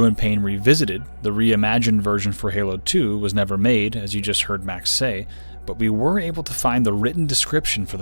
Pain Revisited, the reimagined version for Halo 2 was never made, as you just heard Max say, but we were able to find the written description for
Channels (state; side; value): inverted; both; correlation -1.00